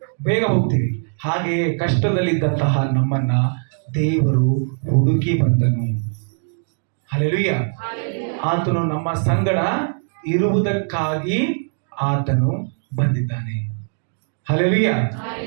ಬೇಗ ಹೋಗ್ತೀವಿ. ಹಾಗೆಯೇ ಕಷ್ಟದಲ್ಲಿದ್ದಂತಹ ನಮ್ಮನ್ನ ದೇವರು ಹುಡುಕಿ ಬಂದನು. ಹಲ್ಲೆಲೂಯಾ. ಆತನು ನಮ್ಮ ಸಂಗಡ ಇರುವುದಕ್ಕಾಗಿ ಆತನು ಬಂದಿದ್ದಾನೆ. ಹಲ್ಲೆಲೂಯಾ.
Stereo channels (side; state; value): left; silent; digital silence